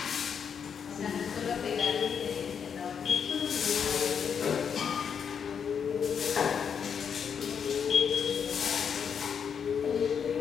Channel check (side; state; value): right; quieter; 7.2 dB